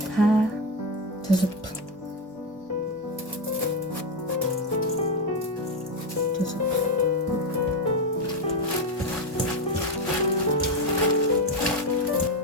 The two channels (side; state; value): both; normal; correlation 0.11